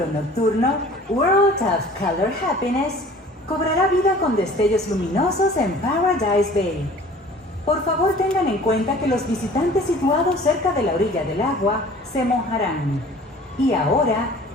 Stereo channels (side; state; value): both; normal; correlation 0.47